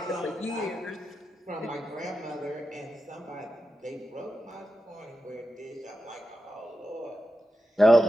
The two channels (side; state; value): both; normal; correlation 0.91